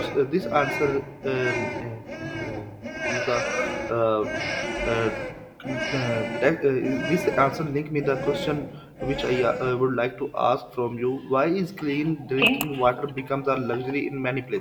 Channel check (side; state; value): both; identical; correlation 1.00